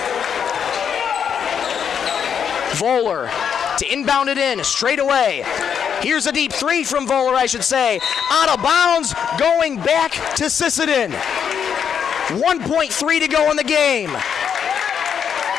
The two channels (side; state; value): right; quieter; 7.7 dB